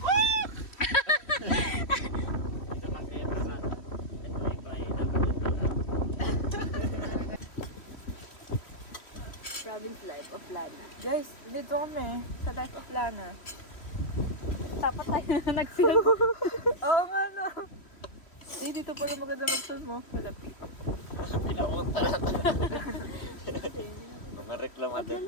Province Life of Lana. Guys, dito kami sa Life of Lana. Dapat tayo na nag-film. Oo nga no. Dito pala maganda mag-film mo. Malapit. Pinapunta na ito. Mga reklamador.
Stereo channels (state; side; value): late; right; 3.1 ms